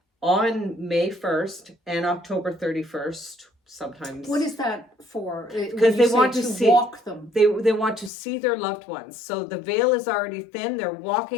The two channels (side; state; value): right; drops out; at 8.1 s